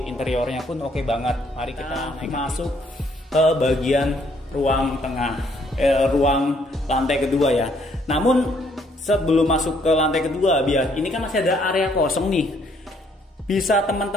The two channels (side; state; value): both; normal; correlation 0.67